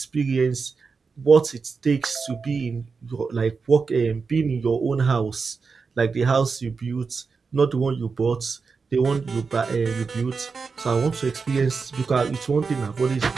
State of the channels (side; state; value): left; quieter; 4.9 dB